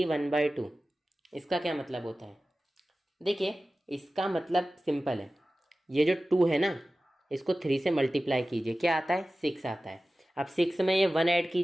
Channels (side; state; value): both; normal; correlation 0.96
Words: इसका क्या मतलब होता है? देखिए, इसका मतलब सिंपल है। ये जो 2 है ना, इसको 3 से मल्टीप्लाई कीजिए, क्या आता है? 6 आता है। अब 6 में ये 1 ऐड